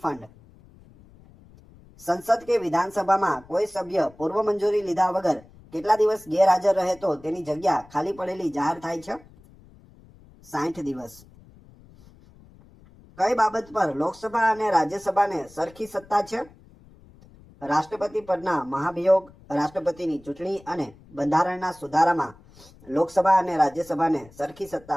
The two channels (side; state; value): left; noise; rumble, 25 dB below the sound